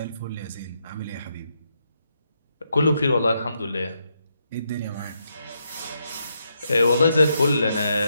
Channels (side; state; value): both; inverted; correlation -0.80